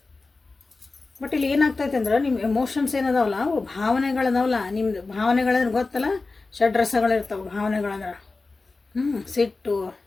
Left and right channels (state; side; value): quieter; right; 3.7 dB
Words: ಬಟ್ ಇಲ್ಲಿ ಏನಾಗ್ತೈತೆ ಅಂದ್ರೆ, ನಿಮ್ಮ ಎಮೋಷನ್ಸ್ ಏನದಾವಲ್ಲ, ಅವು ಭಾವನೆಗಳದಾವಲ್ಲ, ನಿಮ್ಮದು ಭಾವನೆಗಳಂದ್ರೆ ಗೊತ್ತಲ್ಲ, ಷಡ್ರಸಗಳಿರ್ತಾವೆ ಭಾವನೆಗಳಂದ್ರೆ. ಸಿಟ್ಟು,